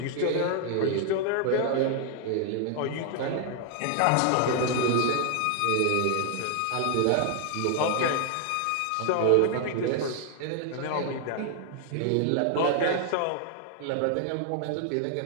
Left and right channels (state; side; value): different; both; correlation 0.00